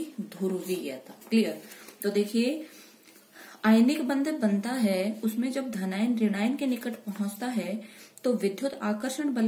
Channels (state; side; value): identical; both; correlation 1.00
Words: ध्रुवीयता। क्लियर। तो देखिए, आयनिक बंध बनता है, उसमें जब धनायन ऋणायन के निकट पहुंचता है तो विद्युत आकर्षण